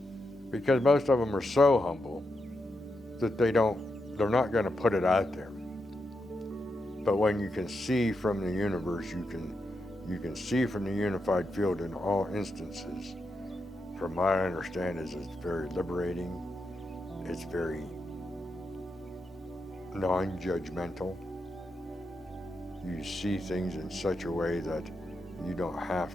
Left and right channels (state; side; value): normal; both; correlation 0.85